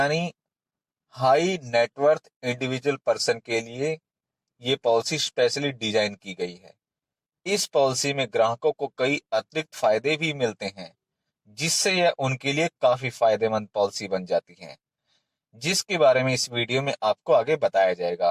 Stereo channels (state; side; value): identical; both; correlation 1.00